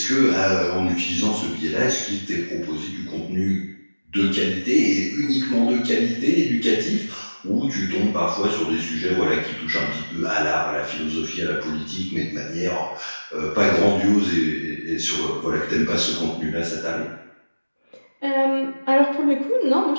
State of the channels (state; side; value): inverted; both; correlation -1.00